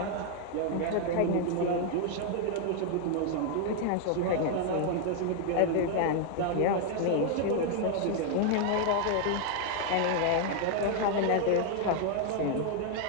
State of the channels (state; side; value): different; both; correlation 0.00